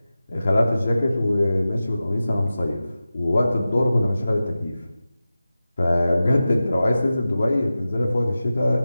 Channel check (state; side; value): inverted; both; correlation -0.94